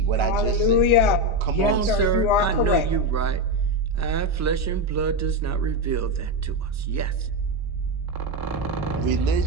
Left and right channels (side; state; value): both; normal; correlation 0.11